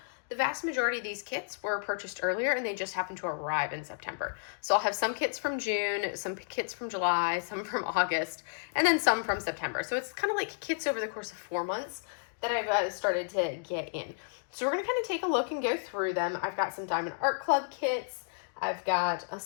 The vast majority of these kits were purchased earlier and they just happened to arrive in September. So I'll have some kits from June, some kits from July, some from August, and then some from September. So it's kind of like kits over the course of 4 months that I've started to get in. So we're going to kind of take a look and go through them. I've got some Diamond Art Club kits. I've got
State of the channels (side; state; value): right; silent; digital silence